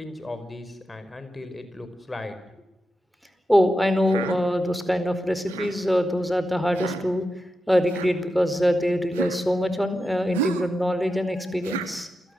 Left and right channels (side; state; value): both; normal; correlation 0.89